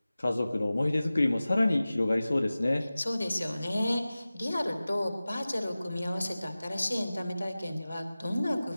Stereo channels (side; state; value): both; inverted; correlation -0.97